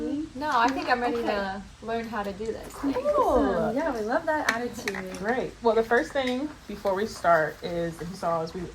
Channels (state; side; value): identical; both; correlation 1.00